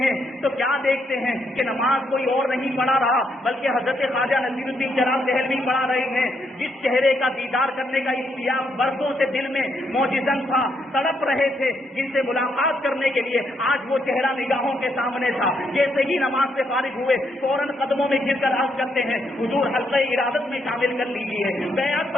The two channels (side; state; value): both; normal; correlation 0.76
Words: ہیں تو کیا دیکھتے ہیں کہ نماز کوئی اور نہیں پڑھا رہا بلکہ حضرت خواجہ نصیر الدین جناب دہلوی پڑھا رہے ہیں. جس چہرے کا دیدار کرنے کا اشتیاق برسوں سے دل میں موجزن تھا, تڑپ رہے تھے جن سے ملاقات کرنے کے لیے, آج وہ چہرہ نگاہوں کے سامنے تھا. جیسے ہی نماز سے فارغ ہوئے فوراً قدموں میں گر کر عرض کرتے ہیں حضور حلقہ ارادت میں شامل کر لیجیے, بیعت